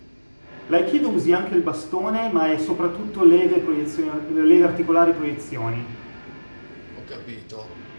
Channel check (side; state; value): both; inverted; correlation -1.00